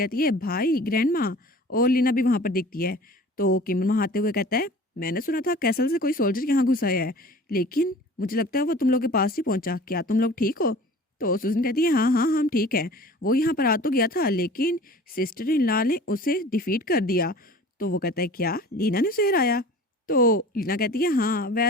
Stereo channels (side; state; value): both; normal; correlation 0.43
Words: है भाई ग्रैंडमा। और लीना भी वहाँ पर दिखती है। तो केमन वहाँ आते हुए कहता है मैंने सुना था कैसल से कोई सोल्जर यहाँ घुस आया है, लेकिन मुझे लगता है वो तुम लोग के पास ही पहुंचा, क्या तुम लोग ठीक हो। तो सुजन कहती है हाँ हाँ हम ठीक हैं। वो यहाँ पर आ तो गया था, लेकिन सिस्टर इन लॉ ने उसे डिफीट कर दिया। तो वो कहता है क्या लीना ने उसे हराया। तो लीना कहती है हाँ